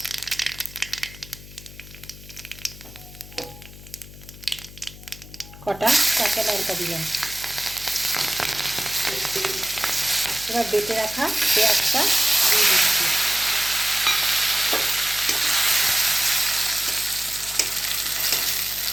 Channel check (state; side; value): noise; left; hum, 17 dB below the sound